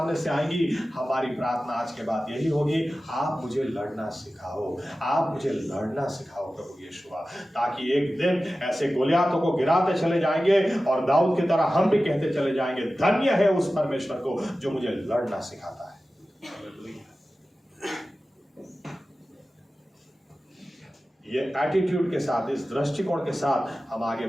से आएंगी। हमारी प्रार्थना आज के बाद यही होगी, आप मुझे लड़ना सिखाओ, आप मुझे लड़ना सिखाओ प्रभु यीशु, ताकि एक दिन ऐसे गोलियातों को गिराते चले जाएंगे और दाऊद की तरह हम भी कहते चले जाएंगे, धन्य है उस परमेश्वर को जो मुझे लड़ना सिखाता है। ये एटीट्यूड के साथ, इस दृष्टिकोण के साथ हम आगे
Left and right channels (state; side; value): normal; both; correlation 0.95